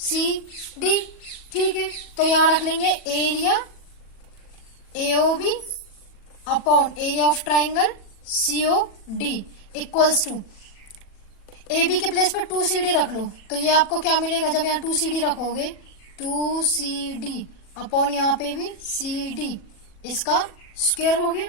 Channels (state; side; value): late; right; 40 ms